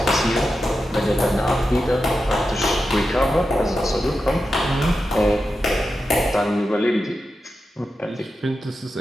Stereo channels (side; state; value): both; normal; correlation 0.90